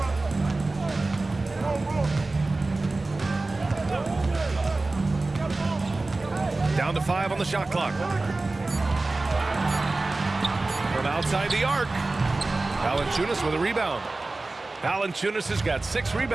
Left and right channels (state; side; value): quieter; left; 3.2 dB